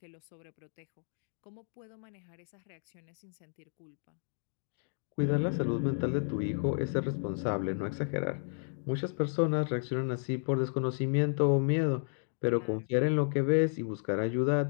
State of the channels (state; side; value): silent; right; digital silence